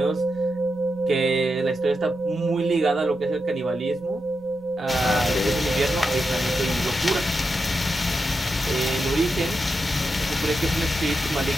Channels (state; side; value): normal; both; correlation 0.87